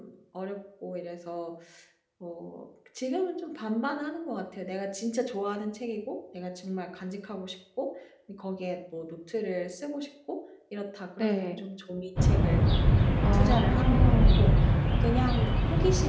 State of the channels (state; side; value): identical; both; correlation 1.00